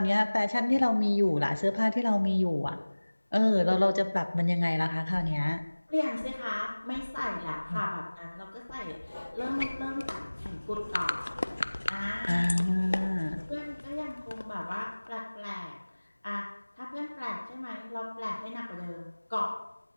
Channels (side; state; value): both; inverted; correlation -1.00